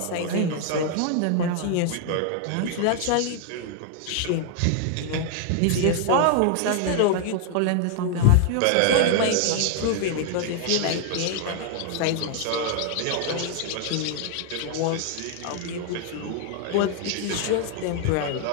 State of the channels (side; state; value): both; different; correlation 0.00